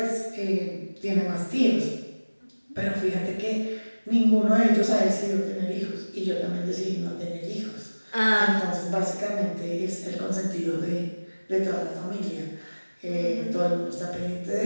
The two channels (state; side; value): inverted; both; correlation -1.00